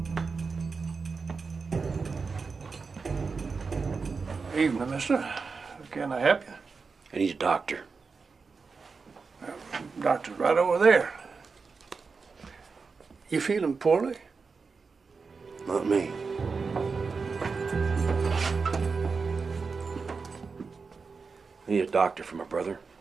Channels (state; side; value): quieter; left; 4.8 dB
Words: Evening, mister. Can I help you? I need a doctor. Doctor's right over there. You feeling poorly? Not me. I need a doctor for my brother.